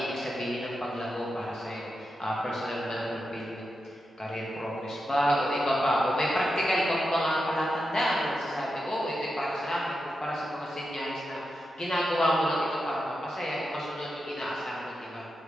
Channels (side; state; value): both; normal; correlation 0.88